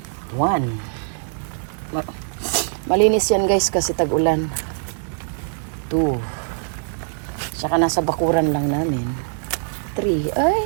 1. Malinis yan, guys, kasi tag-ulan. 2. Tsaka nasa bakuran lang namin. 3. Ay,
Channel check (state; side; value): silent; left; digital silence